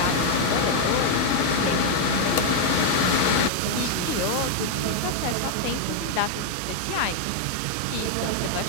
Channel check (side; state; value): both; different; correlation 0.00